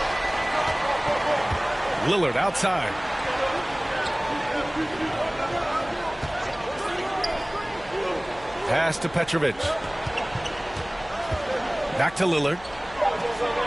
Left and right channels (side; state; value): left; noise; hum, 21 dB below the sound